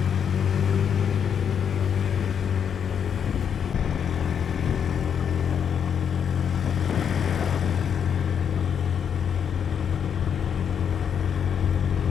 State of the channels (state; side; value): quieter; right; 7.9 dB